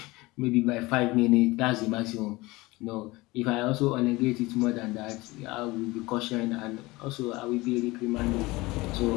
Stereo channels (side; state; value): right; quieter; 21.4 dB